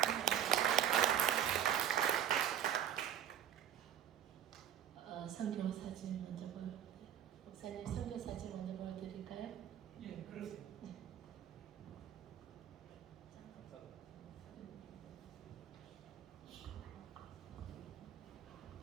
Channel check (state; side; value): quieter; left; 10.0 dB